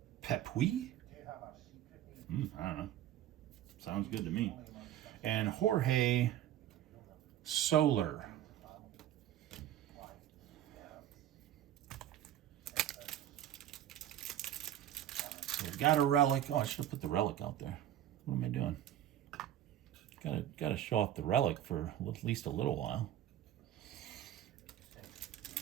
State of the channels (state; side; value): quieter; left; 11.9 dB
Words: Pepuy. I don't know. Sounds good to me. And Jorge Soler. So we got a relic. Oh, I should have put the relic out there. What am I doing? Gotta show off the relic for at least a little while.